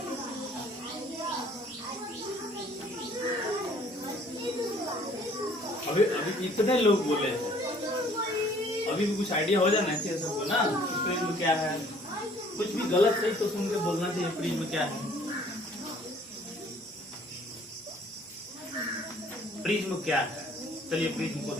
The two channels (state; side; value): normal; both; correlation 0.57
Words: अभी इतने लोग बोले हैं, अभी भी कुछ आइडिया हो जाना चाहिए सबको ना, प्रिज्म क्या है। कुछ भी गलत सही तो सुन के बोलना चाहिए, प्रिज्म क्या है। प्रिज्म क्या है, चलिए प्रिज्म को